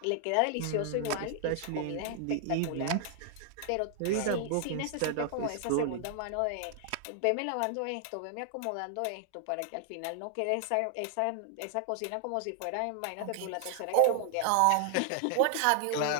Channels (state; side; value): different; both; correlation 0.00